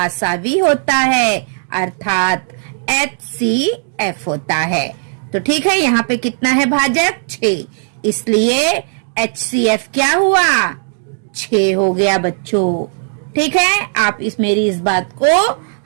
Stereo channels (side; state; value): left; silent; digital silence